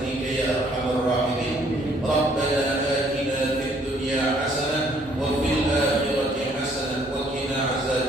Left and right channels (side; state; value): both; normal; correlation 0.63